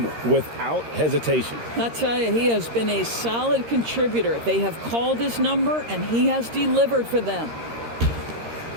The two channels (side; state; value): left; late; 13 ms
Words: without hesitation. I tell you, he has been a solid contributor. They have called his number, and he has delivered for them.